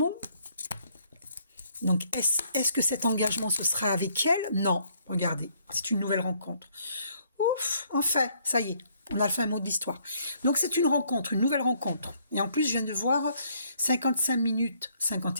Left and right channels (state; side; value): inverted; both; correlation -0.67